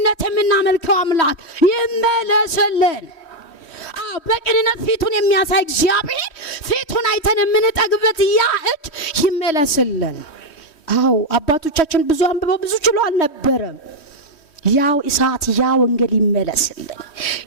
የምናመልከው አምላክ ይመለስልን። በቅንነት ፊቱን የሚያሳይ እግዚአብሔር ፊቱን አይተን የምንጠግበት ያ እጅ ይመለስልን። አባቶቻችን ብዙ አንብበው ብዙ ችሎ አልነበረም። ያው እሳት ያ ወንጌል ይመለስልን፣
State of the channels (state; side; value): late; right; 3.1 ms